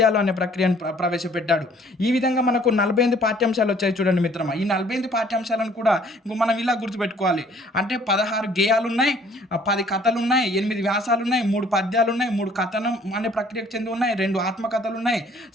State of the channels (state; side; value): normal; both; correlation 0.58